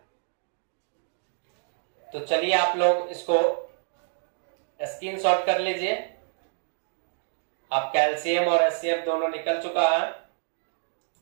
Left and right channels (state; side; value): silent; left; digital silence